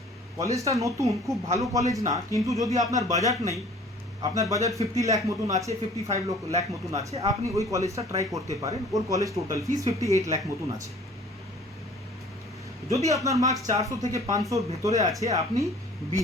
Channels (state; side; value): normal; both; correlation 0.50